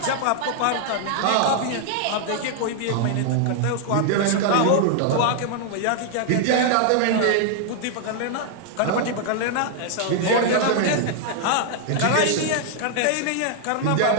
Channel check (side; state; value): both; different; correlation 0.00